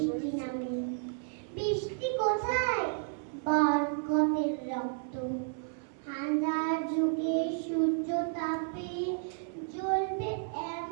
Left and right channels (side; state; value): left; silent; digital silence